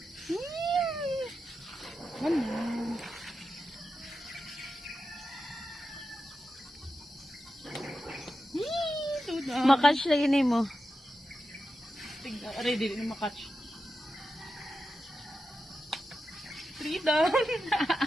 Ano? Makatch lagi ni mo. Tingnan, ready na makatch. 3 down.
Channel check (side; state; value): both; normal; correlation 0.90